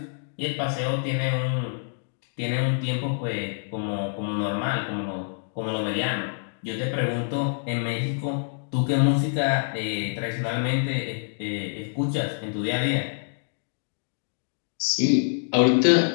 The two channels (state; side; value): silent; right; digital silence